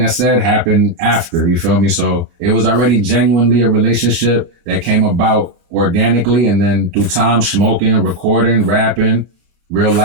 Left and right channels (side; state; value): left; late; 31 ms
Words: I said happened after, you feel me? So it was already genuinely a relationship that came about organically, and then through time, smoking, recording, rapping, real